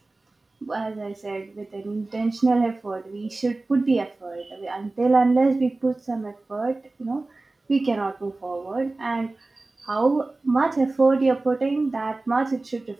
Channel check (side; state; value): left; quieter; 3.2 dB